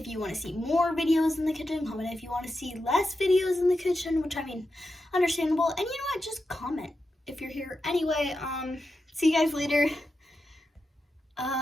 you want to see more videos in the kitchen. Comment if you want to see less videos in the kitchen, which I mean, understandable. And you know what? Just comment if you're here. Anyway, see you guys later.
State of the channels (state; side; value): normal; both; correlation 0.89